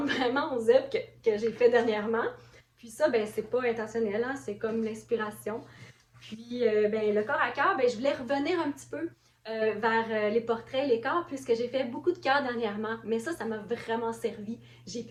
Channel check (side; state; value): both; identical; correlation 1.00